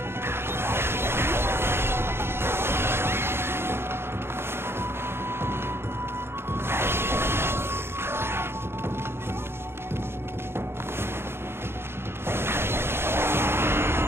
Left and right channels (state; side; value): late; left; 0.12 ms